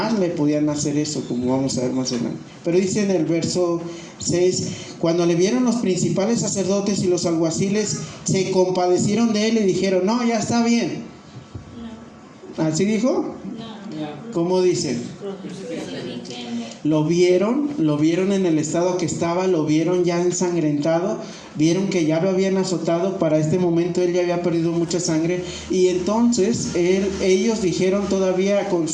le podían hacer eso, como vamos a ver más adelante. Pero dice en el verso 6: cuando le vieron los principales sacerdotes y los alguaciles, se compadecieron de él y dijeron: no, ya está bien. No. ¿Así dijo? No. ¿Cómo dice? Lo vieron en el estado que estaba, lo vieron ya ensangrentado, vieron que ya lo habían azotado. Para este momento él ya había perdido mucha sangre, y entonces ellos dijeron, todavía con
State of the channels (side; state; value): both; identical; correlation 1.00